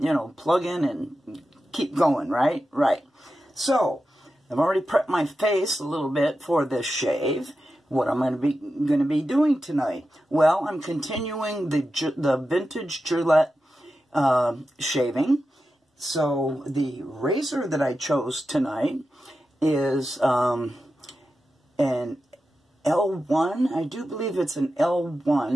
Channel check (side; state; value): both; normal; correlation 0.91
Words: and keep going, right? Right. So, I've already prepped my face a little bit for this shave. What I'm going to be doing tonight? Well, I'm continuing the vintage Gillette shaving. So, the razor that I chose tonight is an L1. I do believe it's an